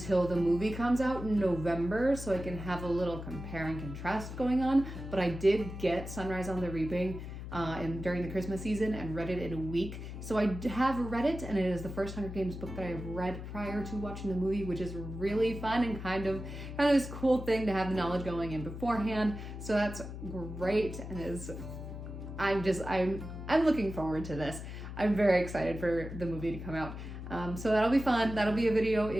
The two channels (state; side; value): noise; left; hum, 9 dB below the sound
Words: the movie comes out in November so I can have a little compare and contrast going on. But I did get Sunrise on the Reaping during the Christmas season and read it in a week. So I have read it, and it is the first Hunger Games book that I've read prior to watching the movie, which is really fun and kind of this cool thing to have the knowledge going in beforehand. So that's great, and I'm looking forward to this. I'm very excited for the movie to come out. So that'll be fun. That'll be a